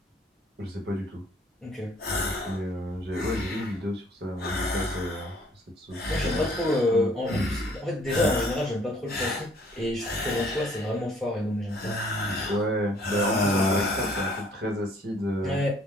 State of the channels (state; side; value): normal; both; correlation 0.60